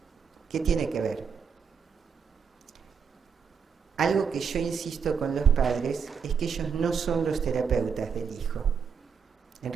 ¿qué tiene que ver? Algo que yo insisto con los padres es que ellos no son los terapeutas del hijo. En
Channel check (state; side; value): quieter; left; 6.5 dB